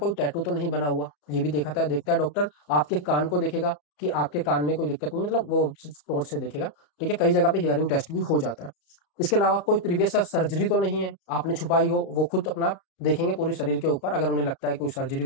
टैटू तो नहीं बना हुआ, ये भी देखता है डॉक्टर। आपके कान को देखेगा कि आपके कान में कोई दिक्कत नहीं, मतलब वो टॉर्च से देखेगा, ठीक है। कई जगह पे हियरिंग टेस्ट भी हो जाता है। इसके अलावा कोई प्रीवियस सर्जरी तो नहीं है आपने छुपाई हो, वो खुद अपना देखेंगे पूरे शरीर के ऊपर अगर उन्हें लगता है कोई सर्जरी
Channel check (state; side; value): late; right; 34 ms